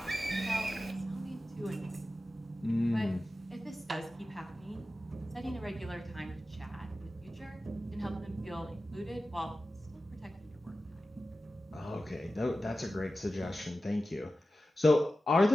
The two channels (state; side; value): normal; both; correlation 0.94